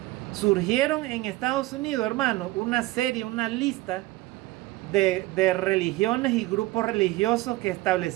surgieron en Estados Unidos, hermanos, una lista de religiones y grupos religiosos que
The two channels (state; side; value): quieter; left; 18.7 dB